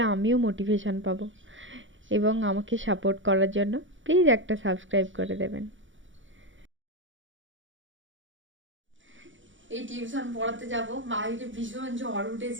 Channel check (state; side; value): late; left; 0.56 ms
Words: আমিও মোটিভেশন পাবো, এবং আমাকে সাপোর্ট করার জন্য প্লিজ একটা সাবস্ক্রাইব করে দেবেন। এই টিউশন পড়াতে যাব, বাইরে ভীষণ ঝড়